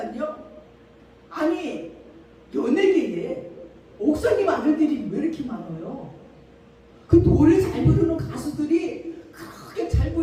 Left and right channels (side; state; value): both; identical; correlation 1.00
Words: 아니 연예계에 목사님 아들들이 왜 이렇게 많아요? 그 노래 잘 부르는 가수들이 그렇게 잘